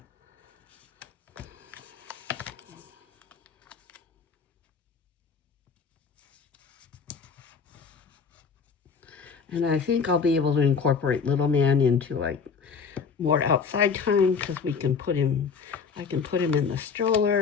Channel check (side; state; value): right; quieter; 5.8 dB